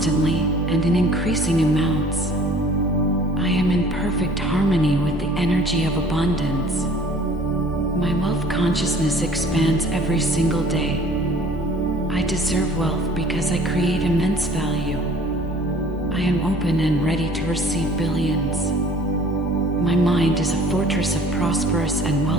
and in increasing amounts. I am in perfect harmony with the energy of abundance. My wealth consciousness expands every single day. I deserve wealth because I create immense value. I am open and ready to receive billions. My mind is a fortress of prosperous and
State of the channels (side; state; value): both; normal; correlation 0.51